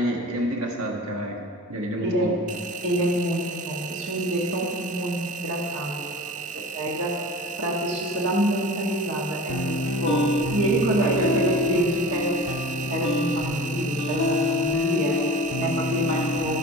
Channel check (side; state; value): both; normal; correlation 0.37